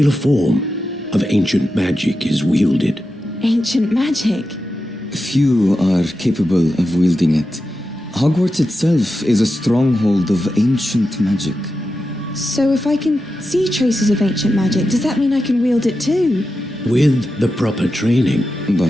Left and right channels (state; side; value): normal; both; correlation 0.90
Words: form of ancient magic is wielded. Ancient magic? Few are capable of wielding it. Hogwarts itself is a stronghold of ancient magic. So if I can see traces of ancient magic, does that mean I can wield it too? With the proper training.